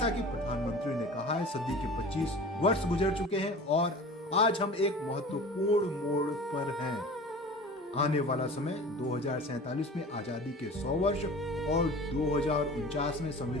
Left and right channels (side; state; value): both; normal; correlation 0.39